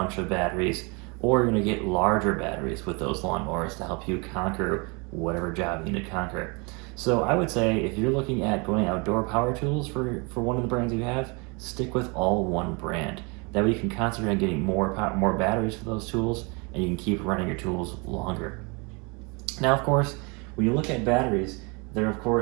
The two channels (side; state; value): left; quieter; 30.6 dB